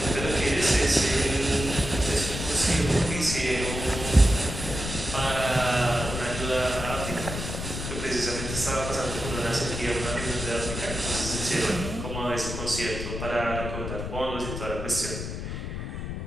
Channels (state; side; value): noise; left; rumble, 6 dB below the sound